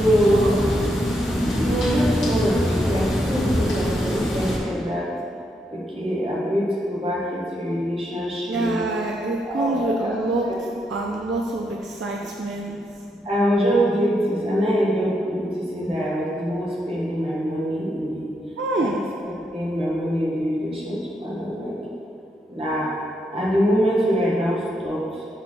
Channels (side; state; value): both; normal; correlation 0.80